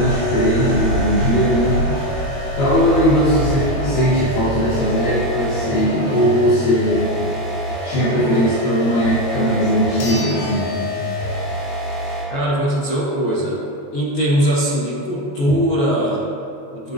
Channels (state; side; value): late; right; 22 ms